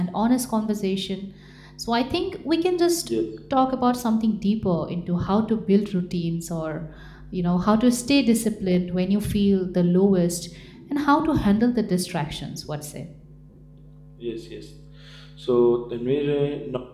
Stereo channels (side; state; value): both; identical; correlation 1.00